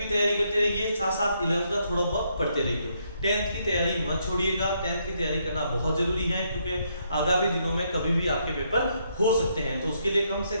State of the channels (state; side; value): inverted; both; correlation -0.75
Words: तैयारी करते रहिए, साथ साथ 11th का थोड़ा बहुत पढ़ते रहिए। 10th की तैयारी मत छोड़िएगा। 10th की तैयारी करना बहुत जरूरी है क्योंकि आगामी दिनों में कभी भी आपके पेपर हो सकते हैं। तो उसके लिए कम से